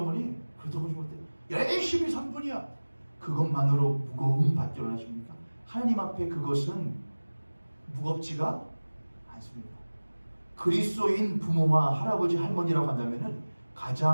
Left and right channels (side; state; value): both; inverted; correlation -1.00